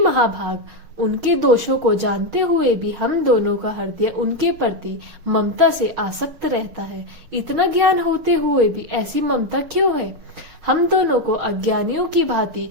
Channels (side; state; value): left; late; 6.4 ms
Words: उनके दोषों को जानते हुए भी हम दोनों का हृदय उनके प्रति ममता से आसक्त रहता है। इतना ज्ञान होते हुए भी ऐसी ममता क्यों है? हम दोनों को अज्ञानियों की भांति